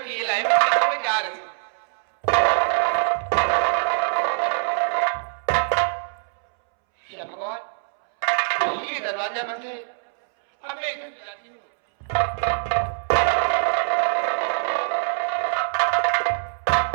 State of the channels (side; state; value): left; silent; 63 dB below the other